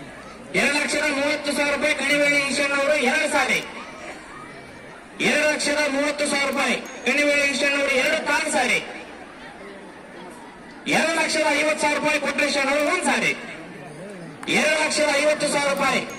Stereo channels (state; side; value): identical; both; correlation 1.00